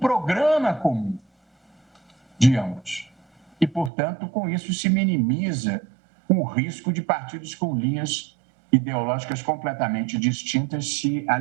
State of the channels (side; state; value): left; drops out; at 3.9 s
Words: comum de ambos. E, portanto, com isso se minimiza o risco de partidos com linhas ideológicas completamente distintas se